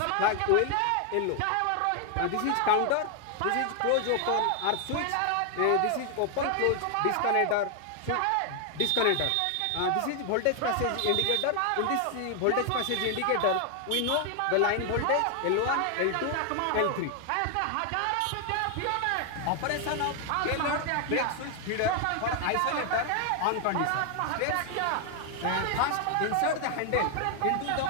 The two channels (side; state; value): both; different; correlation 0.00